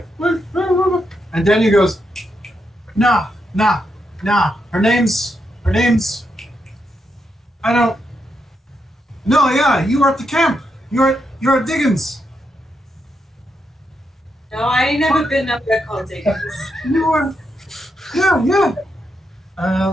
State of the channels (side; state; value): both; normal; correlation 0.82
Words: and Daniel goes, nah. Her name's, I don't. No, yeah, you are at the camp. You're at Diggins. No, I ain't never been up there called Dickens. You are. Yeah.